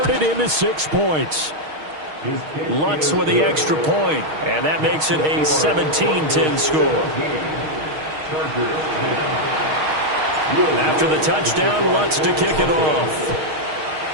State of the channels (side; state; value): left; late; 6.4 ms